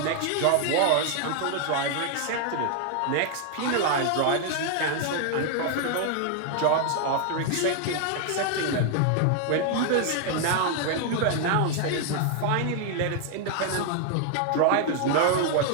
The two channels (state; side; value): different; both; correlation 0.00